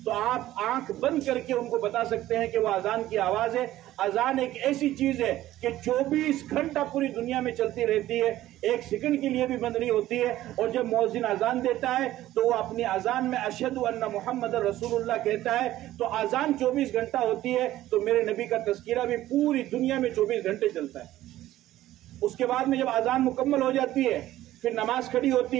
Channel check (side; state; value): left; quieter; 14.6 dB